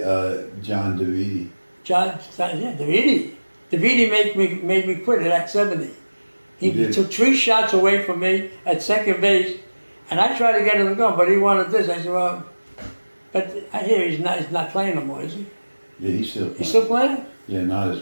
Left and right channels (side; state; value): both; inverted; correlation -1.00